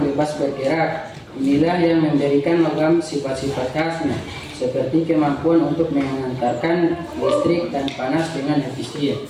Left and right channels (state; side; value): identical; both; correlation 1.00